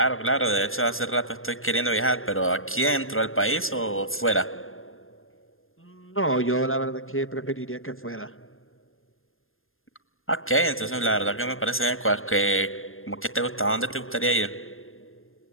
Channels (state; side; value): late; right; 0.60 ms